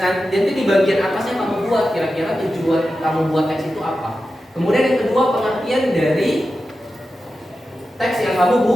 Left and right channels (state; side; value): normal; both; correlation 0.92